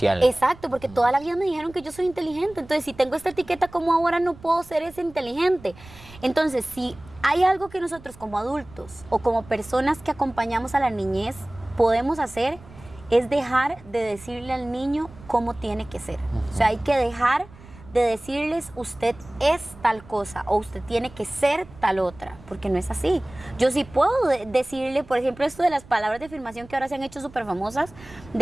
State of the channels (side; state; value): right; noise; rumble, 21 dB below the sound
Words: Exacto, porque toda la vida me dijeron que yo soy inteligente. Entonces, si tengo esta etiqueta, ¿cómo ahora no puedo ser ese inteligente? Entonces, si hay algo que nosotros como adultos o como personas que acompañamos a la niñez podemos hacer, es dejar de decirle al niño cómo tiene que ser. O sea, hay que dejar de decirles usted es tal cosa o usted tiene que ser tal otra, porque no es así. Yo sí puedo decirle, por ejemplo, esto de las palabras de afirmación que ahora se han hecho súper famosas,